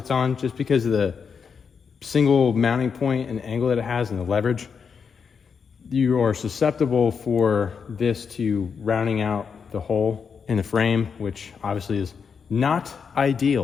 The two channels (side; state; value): right; quieter; 6.2 dB